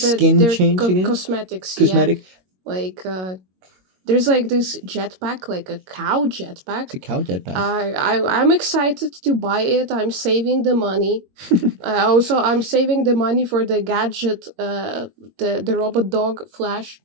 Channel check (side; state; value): left; late; 22 ms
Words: their cosmetics. Cosmetic. Yeah. Like there's like this jetpack, like a cow jetpack. It's a cow jetpack. I'm excited to buy it. I'm saving the money. I'm saving the money for the gadget, the robot dog Flash.